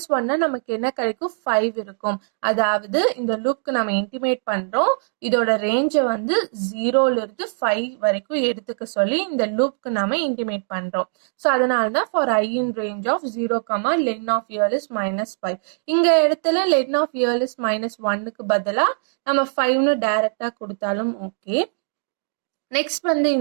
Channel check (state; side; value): silent; left; digital silence